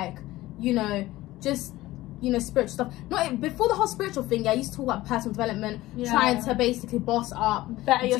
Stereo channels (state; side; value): quieter; right; 17.3 dB